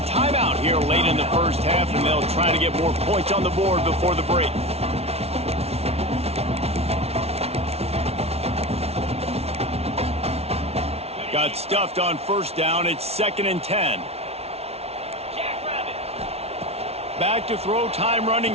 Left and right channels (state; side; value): late; left; 0.30 ms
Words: timeout here late in the first half, and they'll try to get more points on the board before the break. Got stuffed on first down. It's 2nd and 10. Back to throw, time running